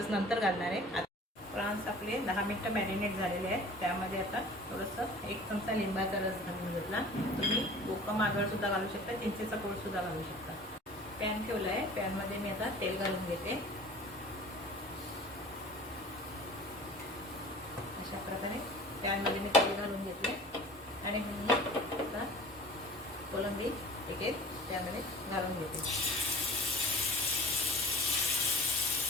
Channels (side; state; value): both; normal; correlation 0.45